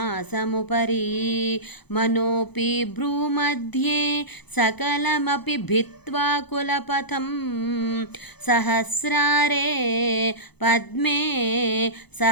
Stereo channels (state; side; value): late; right; 0.98 ms